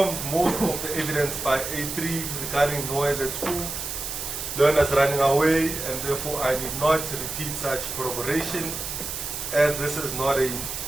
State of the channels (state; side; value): noise; right; hiss, 6 dB below the sound